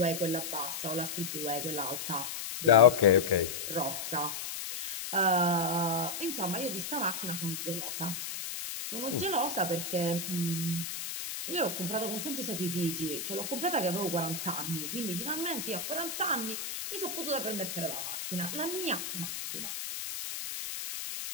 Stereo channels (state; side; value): noise; left; hiss, 5 dB below the sound